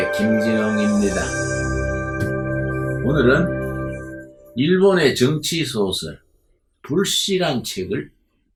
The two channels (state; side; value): identical; both; correlation 1.00